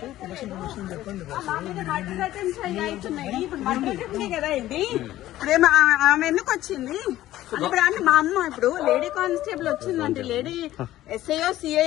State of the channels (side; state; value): right; quieter; 14.5 dB